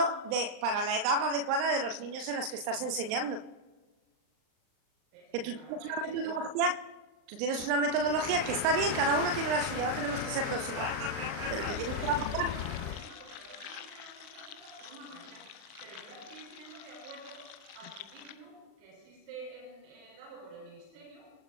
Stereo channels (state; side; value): late; left; 40 ms